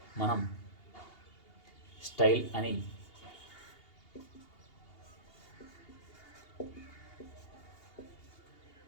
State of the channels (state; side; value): late; right; 2.8 ms